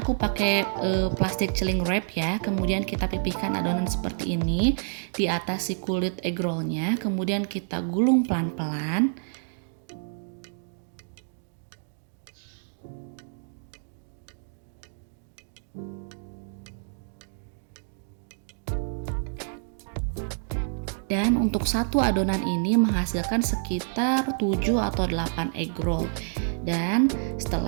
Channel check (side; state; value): left; silent; digital silence